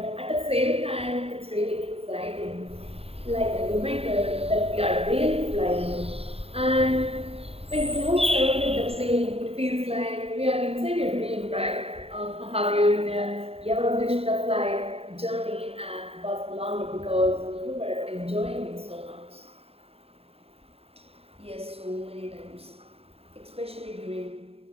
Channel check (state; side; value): late; left; 0.29 ms